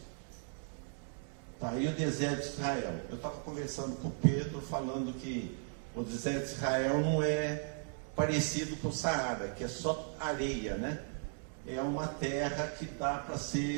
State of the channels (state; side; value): silent; left; 53 dB below the other